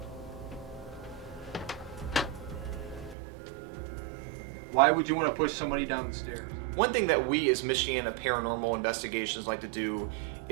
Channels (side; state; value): left; drops out; at 3.2 s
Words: Why would you want to push somebody down the stairs? One thing that we as Michiana Paranormal Investigations like to do